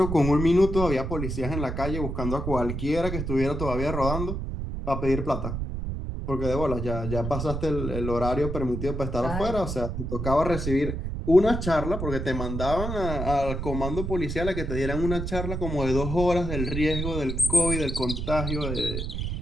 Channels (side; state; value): right; noise; rumble, 4 dB below the sound